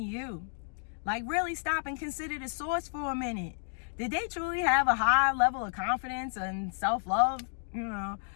you. Like, really stop and consider the source for a minute. Did they truly have a high level of confidence and self-love?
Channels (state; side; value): silent; right; digital silence